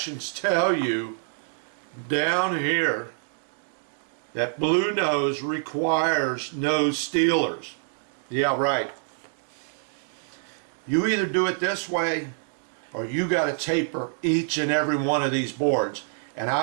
tell you down here that BLUENOSE requires no stealers. Yeah, right. You either do it this way or you got to taper each and every one of these boards. And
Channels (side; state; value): left; silent; digital silence